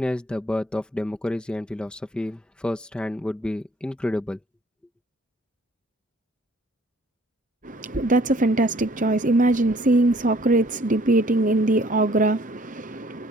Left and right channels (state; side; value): normal; both; correlation 0.58